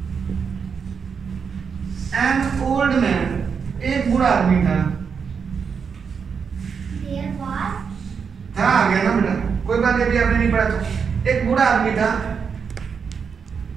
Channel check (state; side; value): quieter; left; 6.2 dB